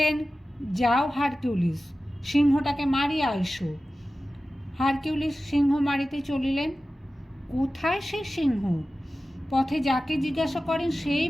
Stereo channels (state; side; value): normal; both; correlation 0.95